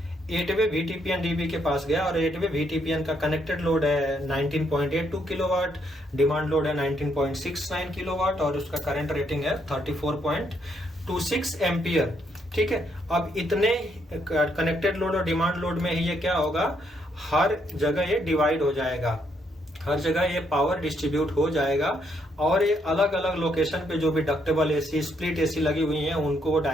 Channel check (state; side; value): normal; both; correlation 0.74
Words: 8-वे VTPN DB के पास गया और 8-वे VTPN का कनेक्टेड लोड है 19.82 किलोवाट, डिमांड लोड है 19.69 किलोवाट और उसका करंट रेटिंग है 34.26 एम्पियर, ठीक है। अब इतने कनेक्टेड लोड और डिमांड लोड में ही ये क्या होगा, हर जगह ये डिवाइड हो जाएगा, हर जगह ये पावर डिस्ट्रीब्यूट हो जाएगा और ये अलग अलग लोकेशन पे जो भी डक्टेबल AC, स्प्लिट AC लगी हुई हैं उनको वो